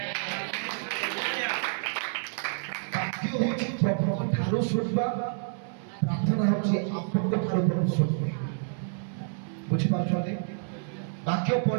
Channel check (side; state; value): left; silent; digital silence